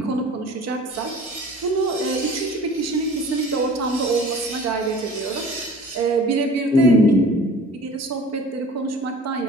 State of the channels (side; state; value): both; normal; correlation 0.44